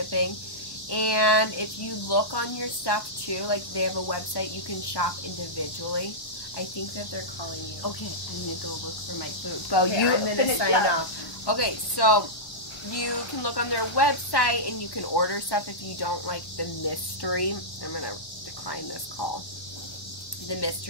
And if you look on your stuff too, like they have a website, you can shop individually. I think that they're calling you. Okay, I'm gonna go look for my food. Well, okay, I'm gonna sign off. Okay, so you can look on their website and you can order stuff if you don't like the mystery. I'm gonna decline this call. The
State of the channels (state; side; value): late; right; 1.1 ms